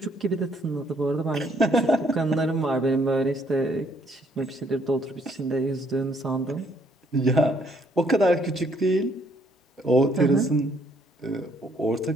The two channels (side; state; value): both; normal; correlation 0.67